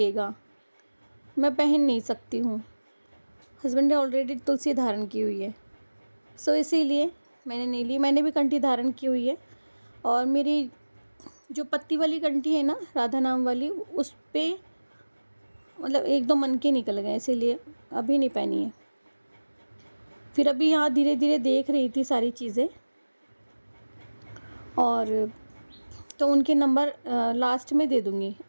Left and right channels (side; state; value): both; inverted; correlation -1.00